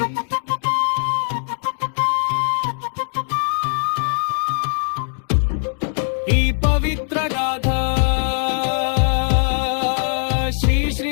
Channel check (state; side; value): silent; right; 57 dB below the other